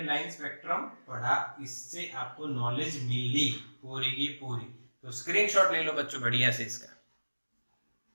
लाइन स्पेक्ट्रम पढ़ा, इससे आपको नॉलेज मिली पूरी की पूरी। तो स्क्रीनशॉट ले लो बच्चों बढ़िया से इसका।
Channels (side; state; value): both; inverted; correlation -1.00